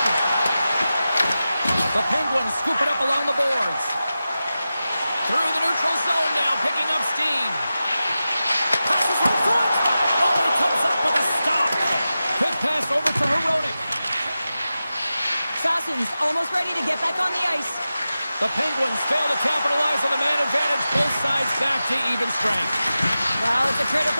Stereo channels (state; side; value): inverted; both; correlation -0.93